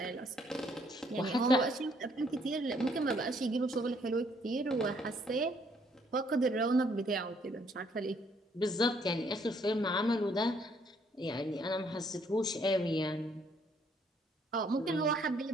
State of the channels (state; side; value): normal; both; correlation 0.67